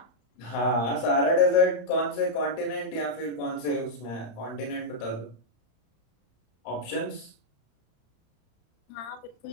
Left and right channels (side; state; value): right; late; 35 ms